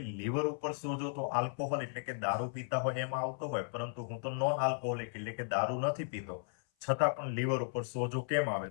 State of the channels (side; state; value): right; silent; 54 dB below the other